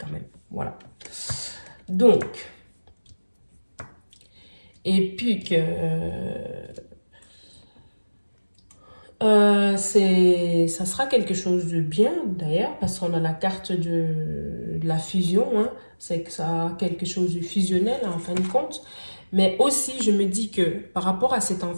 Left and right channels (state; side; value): inverted; both; correlation -1.00